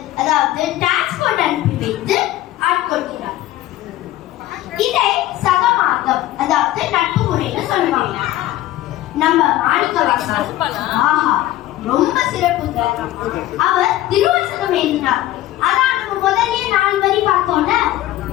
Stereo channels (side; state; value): right; quieter; 14.8 dB